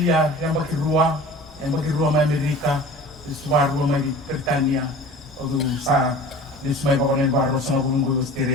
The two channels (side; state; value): both; normal; correlation 0.41